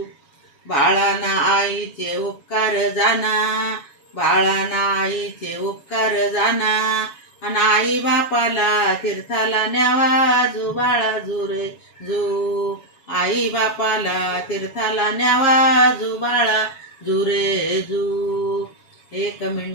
बाळाना आईचे उपकार जाना, बाळाना आईचे उपकार जाना. आणि आई बापाला तीर्थाला न्यावा, जू बाळा जू रे जू. आई बापाला तीर्थाला न्यावा, जू बाळा जू रे जू. हे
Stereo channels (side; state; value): right; late; 7.2 ms